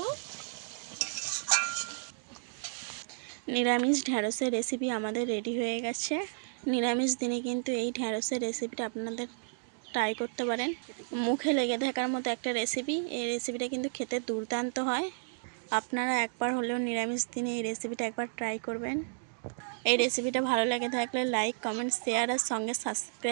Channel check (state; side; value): silent; left; digital silence